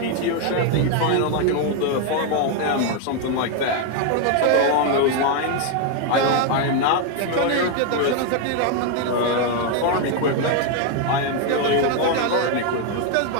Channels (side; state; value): both; different; correlation 0.01